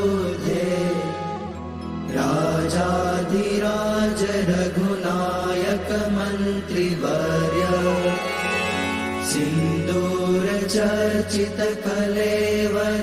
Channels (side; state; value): both; identical; correlation 1.00